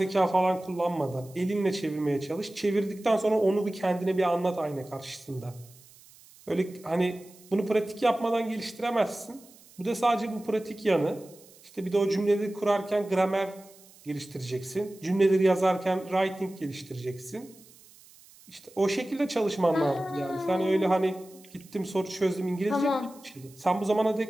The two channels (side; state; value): right; noise; hiss, 24 dB below the sound